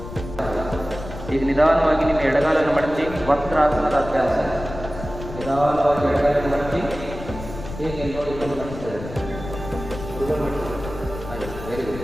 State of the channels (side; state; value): left; noise; rumble, 11 dB below the sound